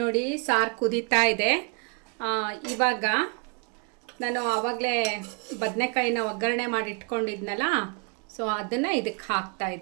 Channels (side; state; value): left; quieter; 35.5 dB